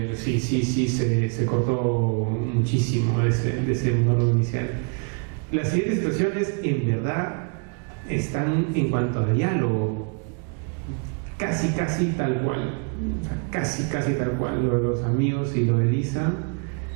sí se cortó muchísimo de ese monólogo inicial. Las siguientes situaciones en verdad están en cuanto a diálogo casi tal cual, o sea, casi tal cual. Lo de los amigos y lo de Lisa,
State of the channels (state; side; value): quieter; left; 36.5 dB